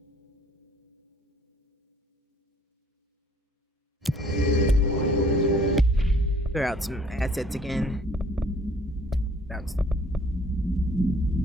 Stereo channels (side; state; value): both; normal; correlation 0.57